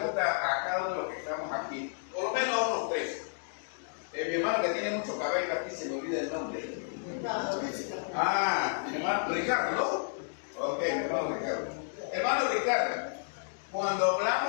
a cada uno de los que estamos aquí, por lo menos a unos tres. Mi hermano que tiene mucho cabello aquí, se me olvida el nombre. Mi hermano Ricardo, ¿no? Ok, mi hermano Ricardo. Hermano Ricardo, cuando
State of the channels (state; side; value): silent; right; digital silence